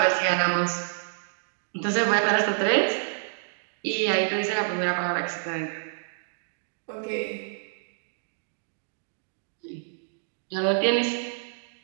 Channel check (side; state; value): left; silent; digital silence